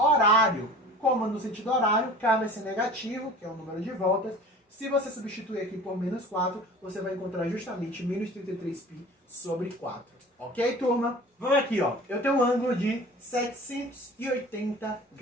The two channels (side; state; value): both; normal; correlation 0.42